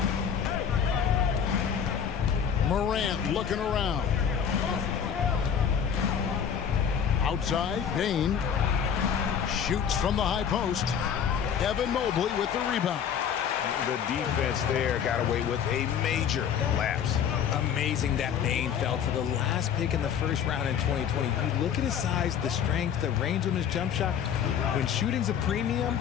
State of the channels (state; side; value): quieter; right; 7.9 dB